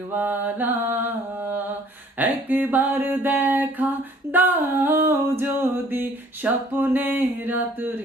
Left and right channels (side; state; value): both; normal; correlation 0.57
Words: একবার দেখা দাও যদি স্বপ্নে